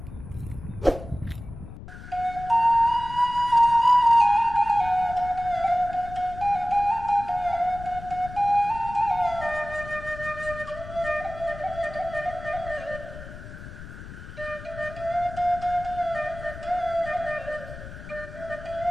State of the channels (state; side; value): noise; left; rumble, 13 dB below the sound